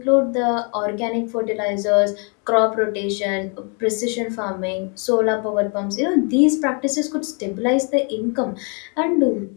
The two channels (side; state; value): right; quieter; 37.1 dB